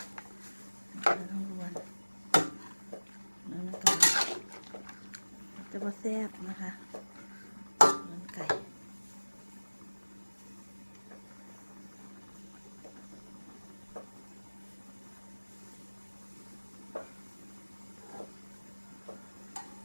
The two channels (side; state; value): both; inverted; correlation -1.00